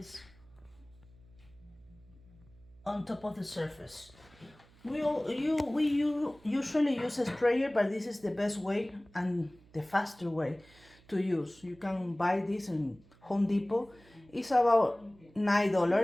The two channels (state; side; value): noise; right; hum, 27 dB below the sound